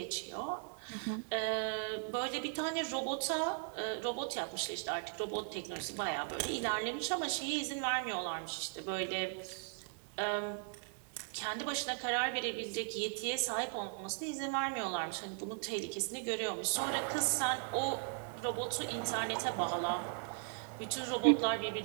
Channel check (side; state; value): left; silent; 53 dB below the other